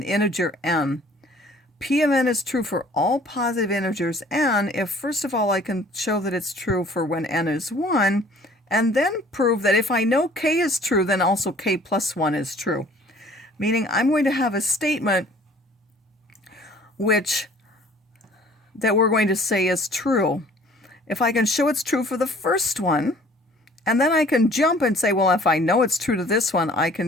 integer n, P of n is true for all positive integers n if, first of all, I can show that it's true for when n is 1, and then prove that if I know k is true, then also k plus 1 is true. Meaning I'm going to have a statement that we're going to say is true. If I can show it's true for the first one, and then I can jump and say, well, if I know it's true to this one, I can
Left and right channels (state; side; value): normal; both; correlation 0.53